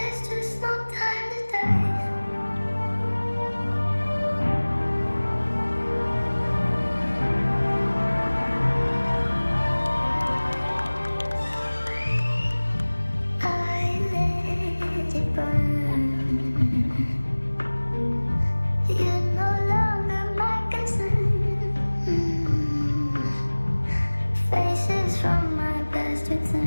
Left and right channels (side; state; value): both; inverted; correlation -1.00